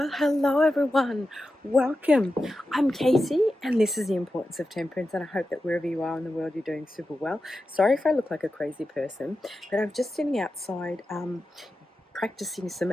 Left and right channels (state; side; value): normal; both; correlation 0.91